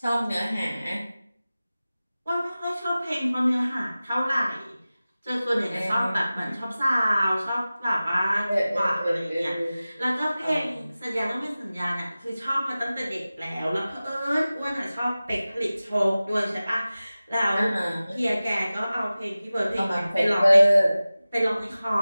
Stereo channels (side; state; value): both; inverted; correlation -0.97